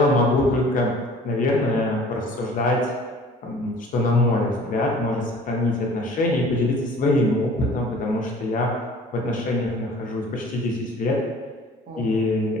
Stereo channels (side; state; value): both; normal; correlation 0.49